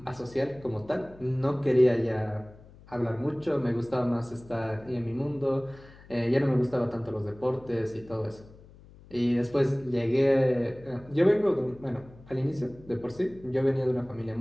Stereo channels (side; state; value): left; noise; hum, 22 dB below the sound